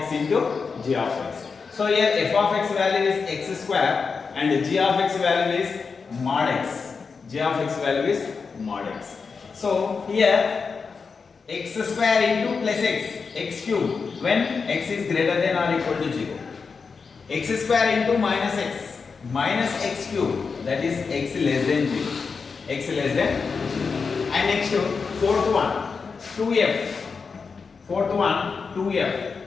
into g of x. So here f of x value is x square and g of x value is mod x. g of x value is mod x. So here x square into plus x, x cube when x is greater than or equal to 0. x square into minus x cube, that is x less than 0. x less than 0. And next fourth one 2f. Fourth one 2f,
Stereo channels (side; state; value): right; quieter; 5.1 dB